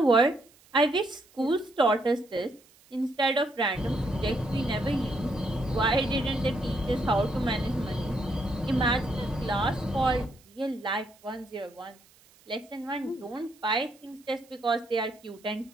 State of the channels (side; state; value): right; noise; hiss, 28 dB below the sound